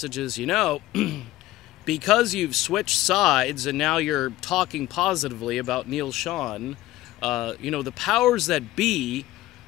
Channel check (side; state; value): right; quieter; 16.6 dB